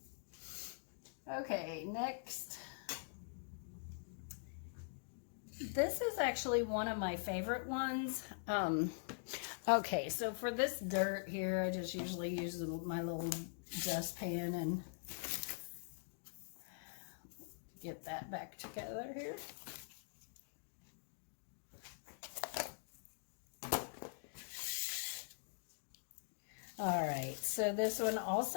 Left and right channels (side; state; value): right; silent; digital silence